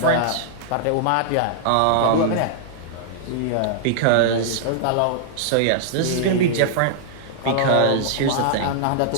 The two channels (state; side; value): different; both; correlation -0.01